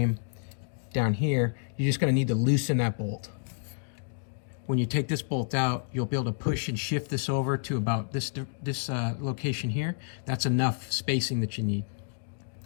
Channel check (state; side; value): silent; right; digital silence